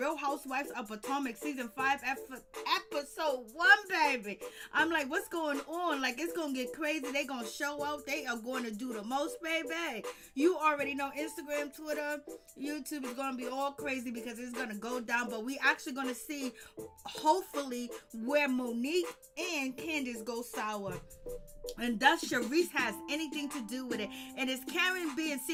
Housewives of Potomac Season 5, Episode 1, baby. I'm like, what's going on? Like, it's going to get crazy. They going to show out. They are going to do the most, baby. You already know Instagram, Twitter, YouTube is going to be all crazy because it's going to go down. But we actually going to see, hopefully, where Monique and Candice go sour, and thus Charisse has anything to do with it. And is Karen being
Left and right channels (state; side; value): identical; both; correlation 1.00